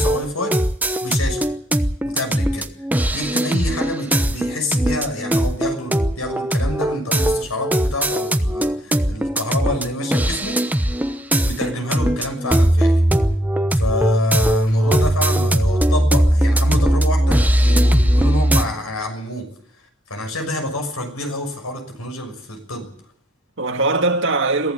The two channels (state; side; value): normal; both; correlation 0.71